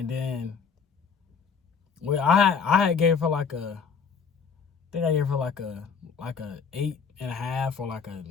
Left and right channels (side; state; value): right; quieter; 6.0 dB